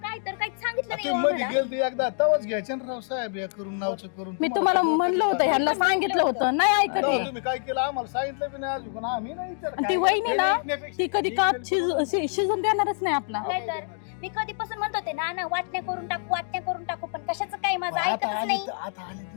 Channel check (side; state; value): right; silent; 61 dB below the other